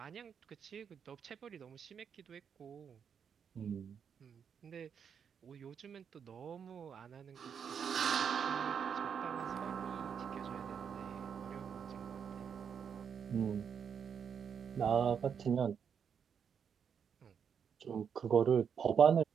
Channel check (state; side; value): quieter; left; 7.3 dB